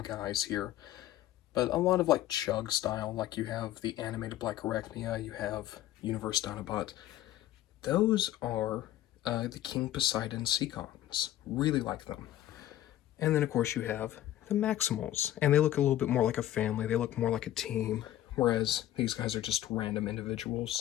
here, but a lot of like Chug style. Like you have the animated Black Arachnia, you have Universe Dinobot. Those are the King Poseidon Seacons. Really like them. And then, of course, you have the Maximals. And they look a little bit more like a family. They look more like a team. Whereas these guys are just random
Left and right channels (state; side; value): quieter; right; 13.3 dB